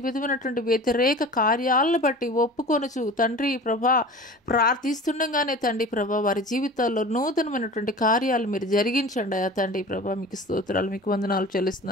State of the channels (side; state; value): both; normal; correlation 0.38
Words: విధమైనటువంటి వ్యతిరేక కార్యాలను బట్టి ఒప్పుకొనుచు తండ్రి ప్రభా ప్రార్థిస్తుండగానే తండ్రి ప్రభా వారి జీవితాల్లో నూతనమైనటువంటి కార్యాలు మీరు జరిగించండి అయ్యా తండ్రి ప్రభా. మీకు స్తోత్రాలు, మీకు వందనాలు